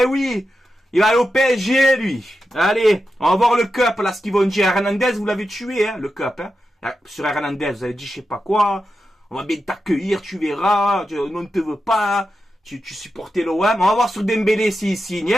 oui, il va aller au PSG lui. Allez, on va voir le cup là, ce qu'ils vont dire. Hernandez, vous l'avez tué, hein, le cup, hein. Sur Hernandez, vous avez dit je sais pas quoi, on va bien t'accueillir, tu verras, on ne te veut pas, tu supportais l'OM, on va voir sur Dembélé s'il signe,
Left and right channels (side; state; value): both; normal; correlation 0.89